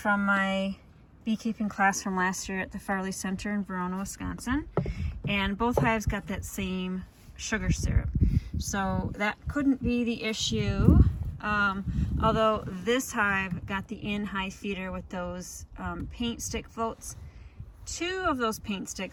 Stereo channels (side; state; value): both; identical; correlation 1.00